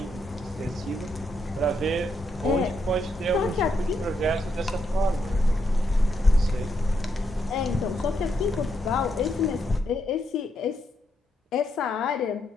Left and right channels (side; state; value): both; normal; correlation 0.79